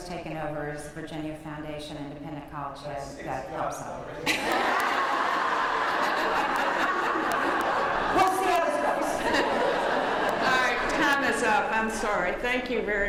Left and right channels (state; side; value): identical; both; correlation 1.00